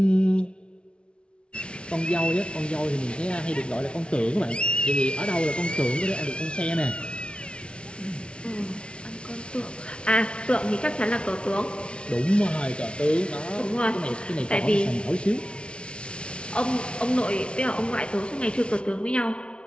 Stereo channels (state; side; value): late; right; 0.058 ms